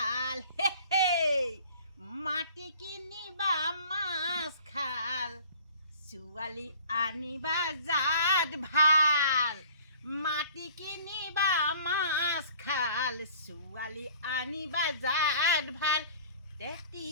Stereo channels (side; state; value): both; inverted; correlation -0.49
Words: মাটি কিনিবা মাছ খাল, ছোৱালী আনিবা জাত ভাল। মাটি কিনিবা মাছ খাল, ছোৱালী আনিবা জাত ভাল।